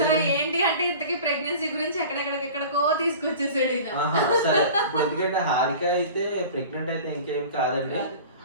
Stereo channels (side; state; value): both; inverted; correlation -0.40